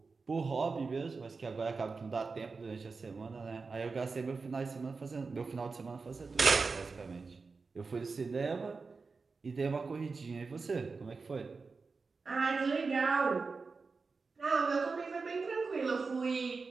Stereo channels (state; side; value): quieter; left; 4.4 dB